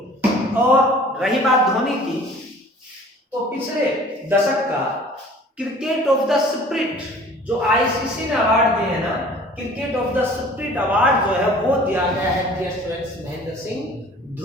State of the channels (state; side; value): normal; both; correlation 0.48